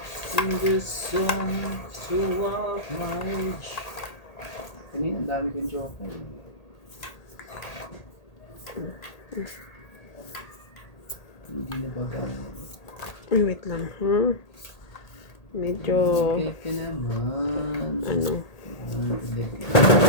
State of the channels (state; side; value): late; right; 1.8 ms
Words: In the sun, so of my age. Kanina, ang dami kong joker. Hindi na baga. Ay, wait lang. Medyo... Okay ka naman. Ano?